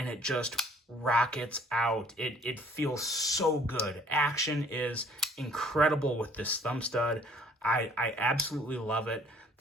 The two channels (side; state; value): both; normal; correlation 0.57